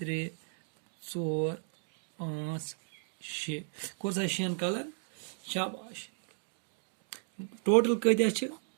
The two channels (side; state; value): left; silent; 55 dB below the other